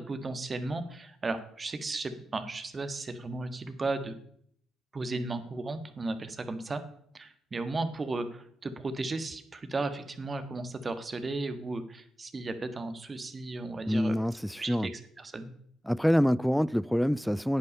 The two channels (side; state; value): both; normal; correlation 0.95